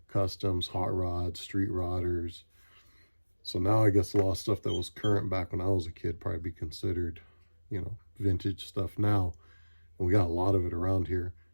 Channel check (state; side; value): inverted; both; correlation -1.00